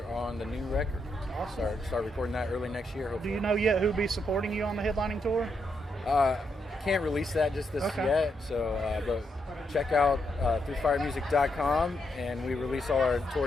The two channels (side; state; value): both; normal; correlation 0.80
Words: on the new record. Awesome. Start recording that early next year, hopefully. Do you know yet who'll be supporting you on the headlining tour? Can't release that just yet, so but check out throughfiremusic.com, and we release all our